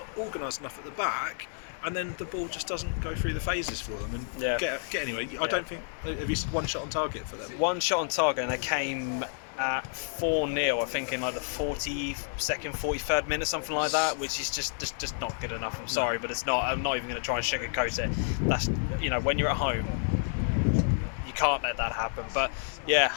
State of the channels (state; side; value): silent; right; 58 dB below the other